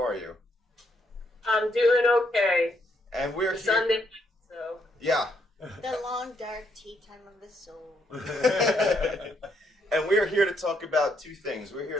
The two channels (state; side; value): normal; both; correlation 0.74